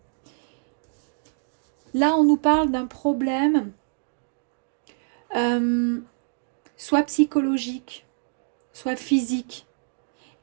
là, on nous parle d'un problème, soit psychologique, soit physique.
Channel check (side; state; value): left; silent; digital silence